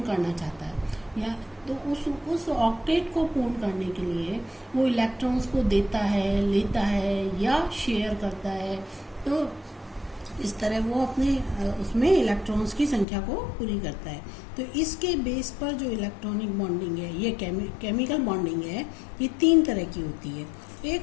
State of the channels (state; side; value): drops out; right; at 13.1 s